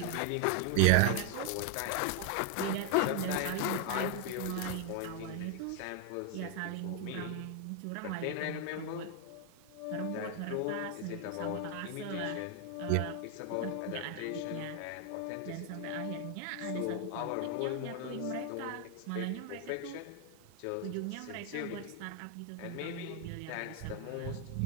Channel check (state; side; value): different; both; correlation 0.01